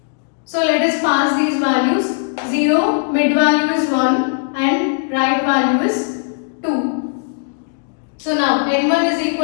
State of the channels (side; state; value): right; silent; digital silence